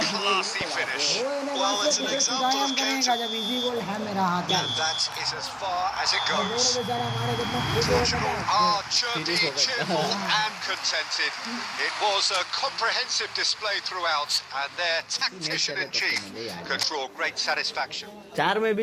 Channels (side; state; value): both; identical; correlation 1.00